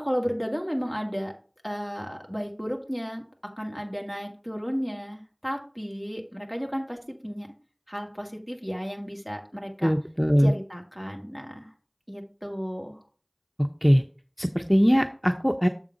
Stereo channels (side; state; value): both; identical; correlation 1.00